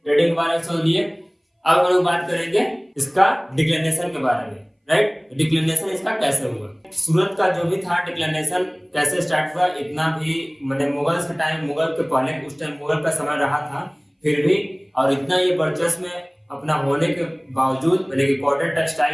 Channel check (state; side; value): identical; both; correlation 1.00